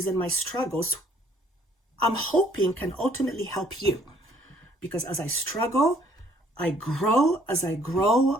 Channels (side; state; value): both; normal; correlation 0.62